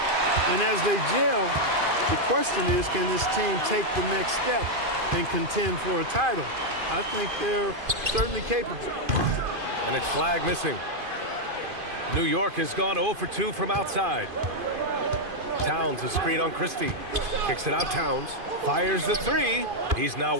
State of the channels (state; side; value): late; left; 2.5 ms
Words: And as they gel, the question is, can this team take the next step and contend for a title? I think they're certainly capable. And it's flag missing. New York has gone 0 for 2 from outside. Towns a screen on Christie. Kicks it out, Towns. Fires the 3. He's now